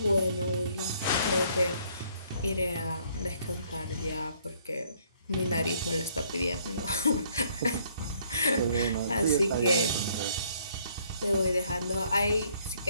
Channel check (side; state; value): both; inverted; correlation -0.64